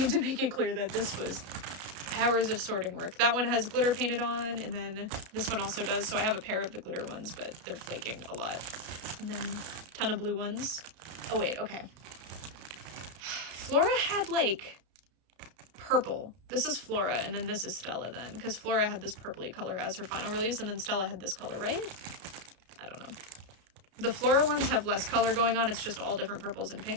make it clear that this was hours of sorting work. That one has glitter painted on, and then this one also does, so I have a pair of the glitter ones, but they're flaking a lot. And then a ton of blue ones. Oh wait, okay. Flora had like purple. This is Flora, and then this is Stella then, because Flora had this purpley color as her final release, and then Stella had this color, right? I don't know. The Flora ones have less color going on, it's just all different purples and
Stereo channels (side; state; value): left; late; 32 ms